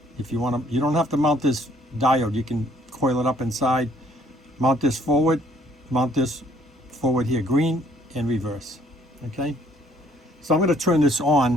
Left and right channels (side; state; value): both; normal; correlation 0.63